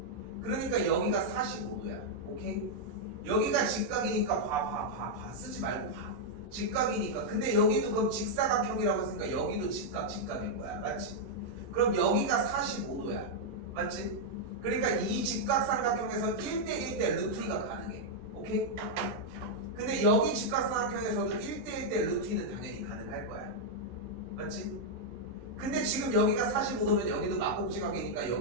그러니까 여기가 45도야. 오케이? 여기가 직각이니까 봐. 쓰지 말고 봐. 직각이니까. 근데 여기도 그럼 직사각형이라고 했으니까 여기도 직각일 거야. 맞지? 그럼 여기가 45도야. 맞지? 그러니까 이 직각삼각형에서 1대1대 루트 2가 가능해. 오케이? 근데 여기 직각삼각형에서도 1대1대 루트 2는 당연히 가능할 거야. 맞지? 근데 지금 여기가 45도면 여기도 막곡지각이니까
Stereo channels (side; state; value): left; late; 14 ms